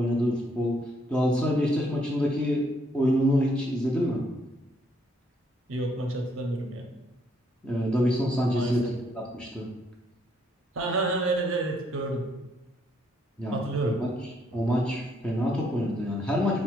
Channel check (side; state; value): both; normal; correlation 0.71